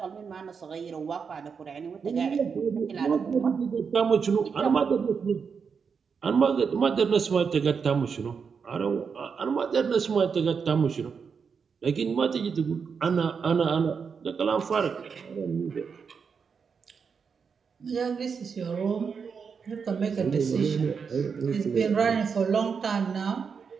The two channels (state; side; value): quieter; left; 6.0 dB